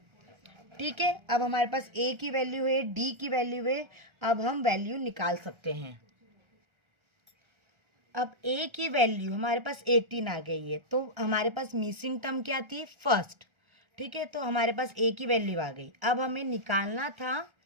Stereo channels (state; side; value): late; left; 1.3 ms